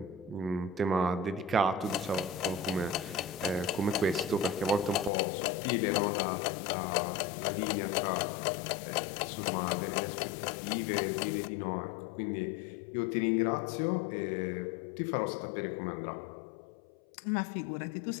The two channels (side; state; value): right; drops out; at 5.1 s